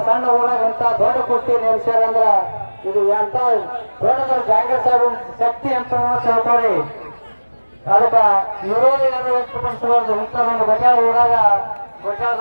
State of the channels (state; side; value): inverted; both; correlation -1.00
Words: ಸಣ್ಣ ಊರಾಗ ಅಂತ ದೊಡ್ಡ ಕುಸ್ತಿ ನೆಲೆಸ್ಯಾರಂದ್ರ ಇದು ಎಂತ ದೊಡ್ಡದ ಜಾಂಗೀರ್ ಸಾಹೇಬ್ ಶಕ್ತಿ ಅಂತ ತಿಳ್ಕೊಳ್ಳಿ ಅದಕ್ಕ ವಿರೋಧ ಯಾರು ವ್ಯಕ್ತಪಡಿಸಬಾರ್ದು ಇಂಥದೊಂದು ಗೊತ್ತಾಳ ಊರಾಗ